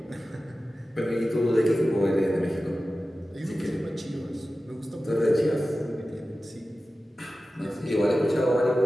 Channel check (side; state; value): both; normal; correlation 0.95